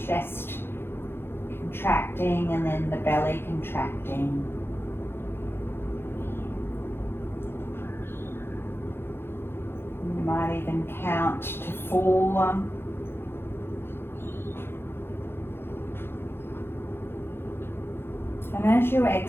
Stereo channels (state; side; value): late; right; 0.11 ms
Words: contracting, and then the belly contracting. You might even count to 4. And as you